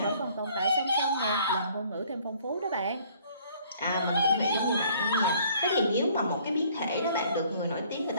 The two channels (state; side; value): inverted; both; correlation -0.59